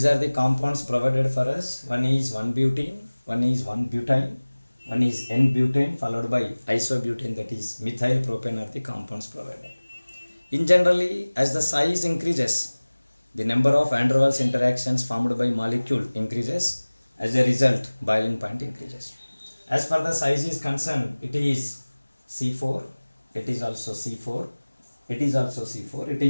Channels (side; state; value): both; inverted; correlation -1.00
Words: are the compounds provided for us. One is 1-butene, one is 1-butane, one is N-butane followed by isobutane, that is methyl propane are the compounds provided. In generally, as the size increases, the number of van der Waals interactions formed by molecule increases. As a result, boiling point increases. As far the size is concerned, it is C4, it is also C4, it is also C4, it